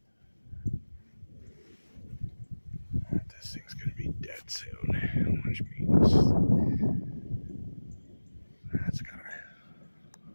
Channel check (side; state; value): both; inverted; correlation -1.00